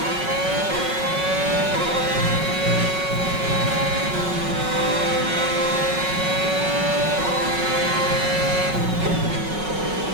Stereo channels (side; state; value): left; late; 5.4 ms